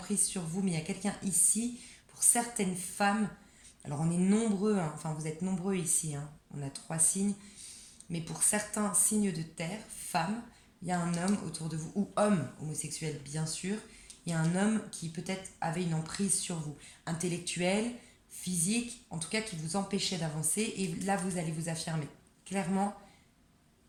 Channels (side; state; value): both; identical; correlation 1.00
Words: sur vous, mais il y a quelqu'un ici, pour certaines femmes, alors on est nombreux, hein, enfin vous êtes nombreux ici, hein, on a 3 signes, mais pour certains signes de terre, femmes, il y a un homme autour de vous, ou homme homosexuel bien sûr, il y a un homme qui peut-être avait une emprise sur vous, intellectuelle, physique, en tout cas qui vous empêchait d'avancer, et là vous allez vous affirmer, clairement,